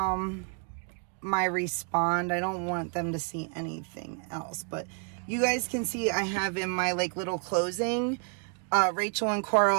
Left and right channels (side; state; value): left; quieter; 39.9 dB